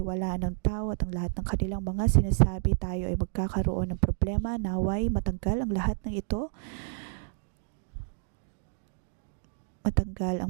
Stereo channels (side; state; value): left; silent; digital silence